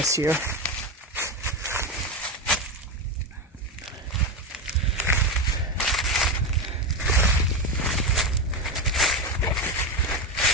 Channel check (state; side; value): normal; both; correlation 0.14